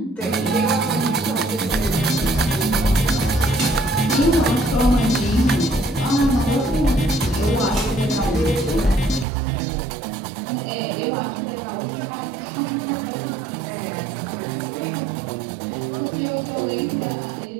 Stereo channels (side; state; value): left; drops out; at 9.2 s